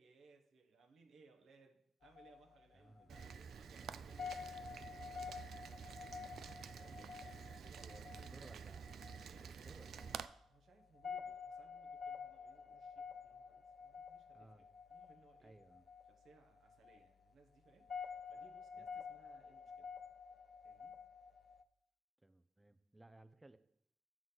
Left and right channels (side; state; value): both; normal; correlation 0.72